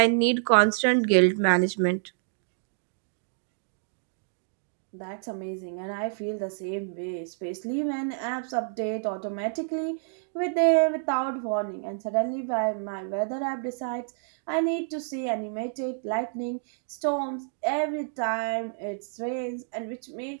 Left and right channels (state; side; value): silent; left; digital silence